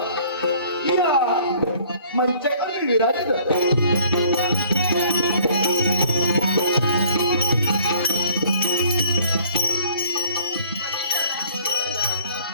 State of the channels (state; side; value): inverted; both; correlation -0.56